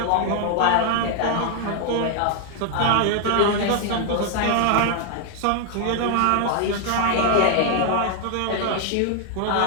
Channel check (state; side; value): different; both; correlation 0.00